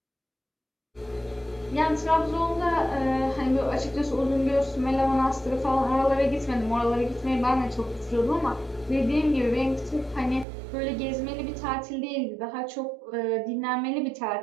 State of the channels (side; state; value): left; drops out; at 10.5 s